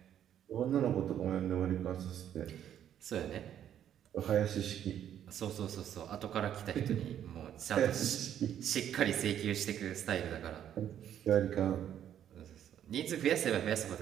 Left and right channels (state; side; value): quieter; left; 10.2 dB